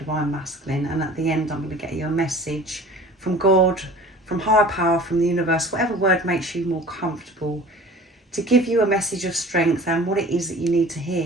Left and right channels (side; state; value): both; normal; correlation 0.44